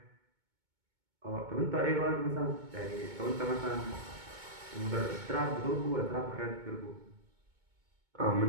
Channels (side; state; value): left; late; 2.2 ms